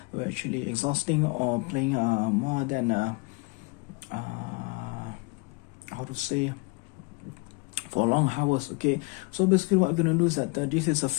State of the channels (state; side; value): quieter; right; 27.9 dB